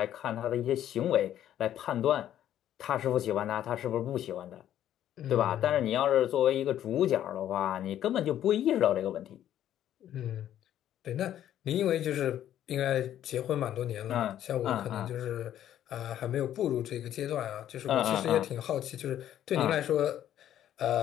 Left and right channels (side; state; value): right; quieter; 11.4 dB